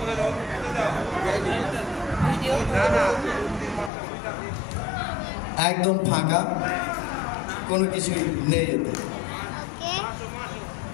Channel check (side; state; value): right; drops out; at 3.9 s